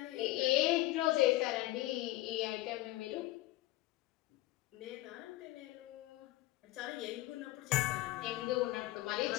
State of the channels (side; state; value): right; quieter; 17.3 dB